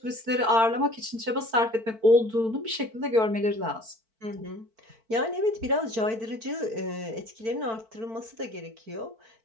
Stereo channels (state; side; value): late; left; 4.5 ms